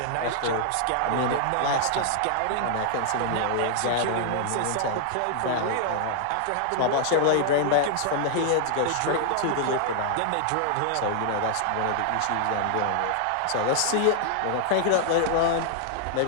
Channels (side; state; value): both; different; correlation 0.00